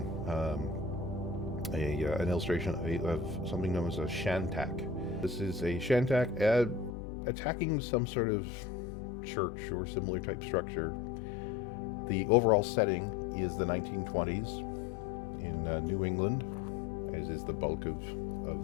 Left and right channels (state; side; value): drops out; right; at 6.9 s